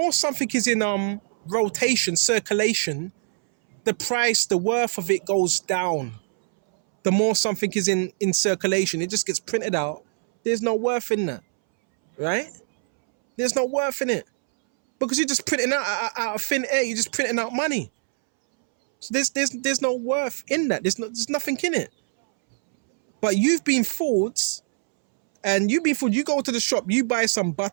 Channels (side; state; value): left; silent; 63 dB below the other